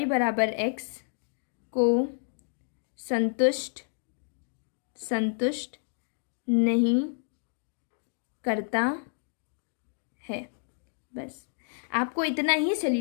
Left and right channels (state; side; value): silent; right; digital silence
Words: बराबर x को संतुष्ट नहीं करता है। बस आपको इतना ही